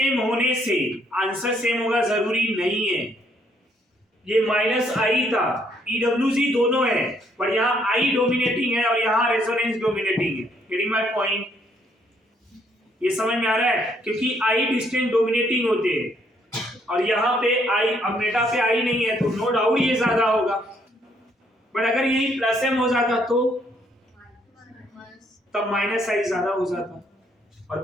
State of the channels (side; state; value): both; normal; correlation 0.69